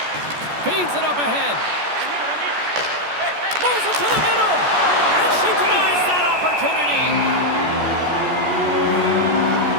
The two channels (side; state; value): left; late; 14 ms